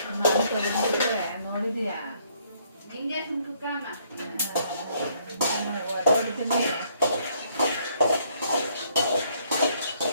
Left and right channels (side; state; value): both; inverted; correlation -0.67